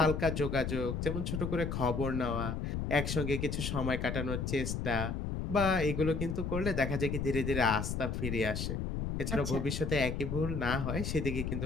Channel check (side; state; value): left; noise; rumble, 2 dB below the sound